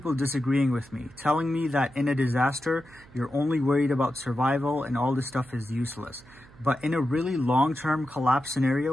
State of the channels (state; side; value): noise; right; hum, 24 dB below the sound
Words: disagreeing with me, telling me that in a disaster, you're only worried about survival and all this stuff is useless. But in a really long-term collapse scenario,